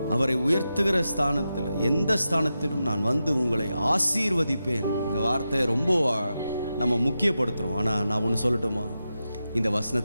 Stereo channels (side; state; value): both; inverted; correlation -0.90